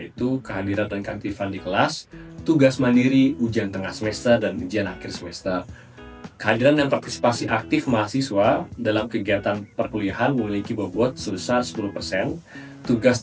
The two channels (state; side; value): identical; both; correlation 1.00